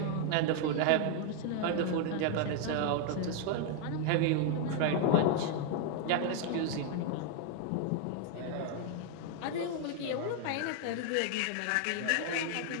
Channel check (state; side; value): different; both; correlation 0.00